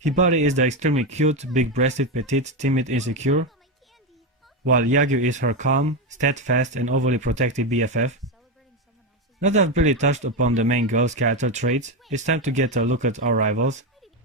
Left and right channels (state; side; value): normal; both; correlation 0.11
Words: Hibari is the extremely cute, big-breasted, petite, timid, insecure, while Yagyu is her calm, steadfast, and overly protective BFF. Now that I've really touched upon the main girl's character traits, it's time to get a look at our rivals.